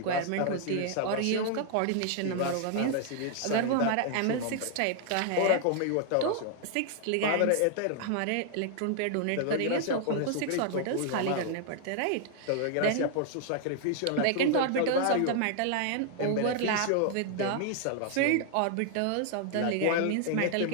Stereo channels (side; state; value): both; different; correlation 0.00